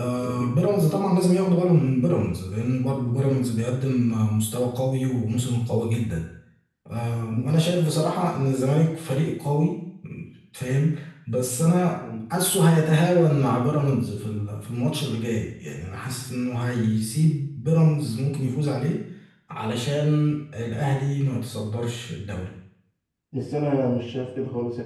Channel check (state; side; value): identical; both; correlation 1.00